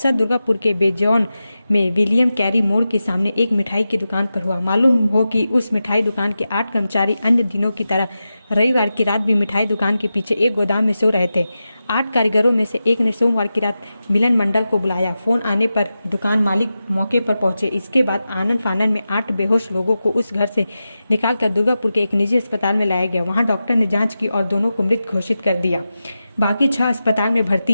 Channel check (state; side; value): inverted; both; correlation -0.92